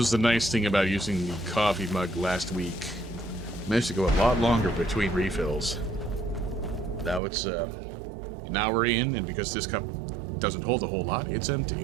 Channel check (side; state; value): left; drops out; at 7.2 s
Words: the nice thing about using the coffee mug last week. Managed to go a lot longer between refills. Now it's an hour in, and because this cup doesn't hold a whole lot, it's